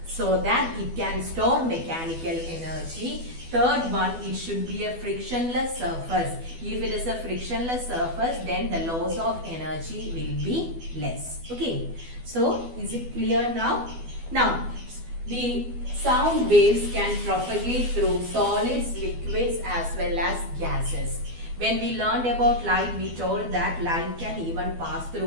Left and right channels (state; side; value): late; left; 12 ms